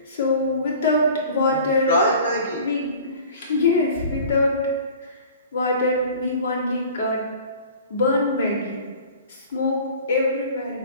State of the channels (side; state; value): both; inverted; correlation -0.44